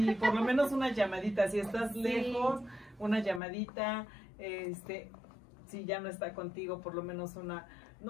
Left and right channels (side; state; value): right; drops out; at 3.4 s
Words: por lo menos una llamadita, si estás Sí. lejos, una llamadita, si ya no está contigo, por lo menos una,